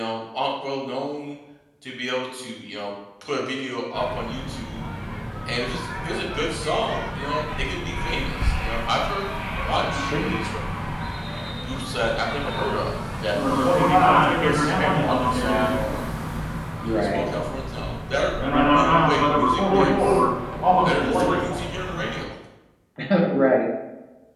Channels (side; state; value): both; identical; correlation 1.00